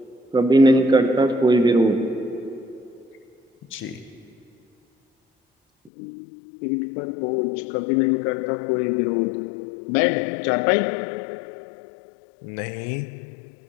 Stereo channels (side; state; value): right; drops out; at 5.9 s